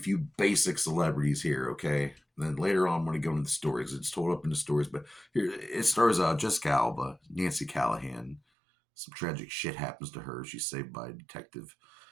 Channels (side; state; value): left; drops out; at 8.4 s